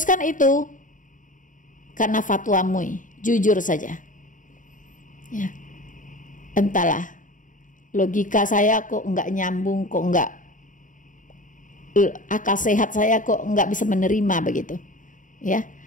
itu karena fatwa MUI. Jujur saja. Ya, entahlah, logika saya kok nggak nyambung, kok nggak, akal sehat saya kok nggak bisa menerima begitu. Ya,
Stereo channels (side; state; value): right; late; 0.38 ms